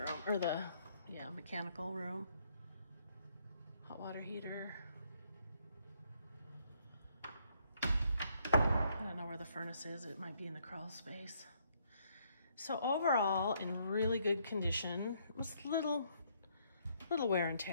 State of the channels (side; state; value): both; inverted; correlation -0.70